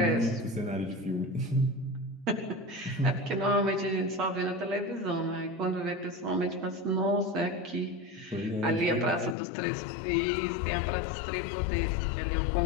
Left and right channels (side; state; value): right; drops out; at 9.3 s